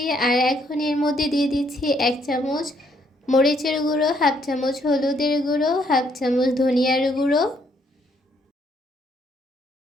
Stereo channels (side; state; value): both; normal; correlation 0.70